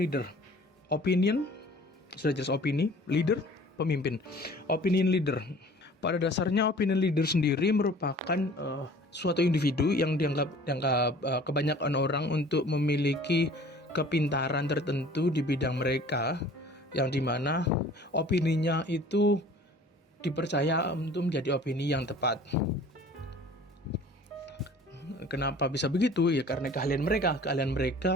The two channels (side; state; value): both; normal; correlation 0.48